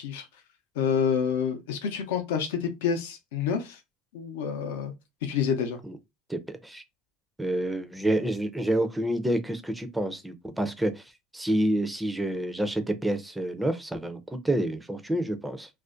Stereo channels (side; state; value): both; normal; correlation 0.62